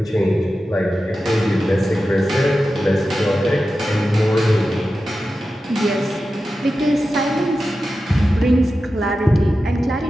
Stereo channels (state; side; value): normal; both; correlation 0.92